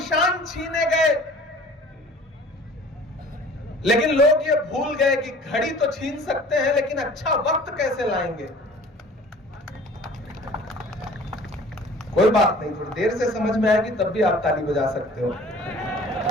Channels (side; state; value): both; normal; correlation 0.48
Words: छीने गए। लेकिन लोग ये भूल गए कि घड़ी तो छीन सकते हैं, लेकिन अच्छा वक्त कैसे लाएंगे। कोई बात नहीं, थोड़ी देर से समझ में आएगी तब भी आप ताली बजा सकते हो।